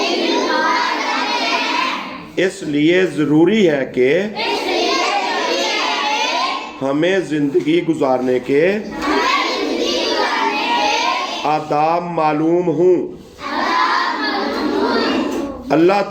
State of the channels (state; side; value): identical; both; correlation 1.00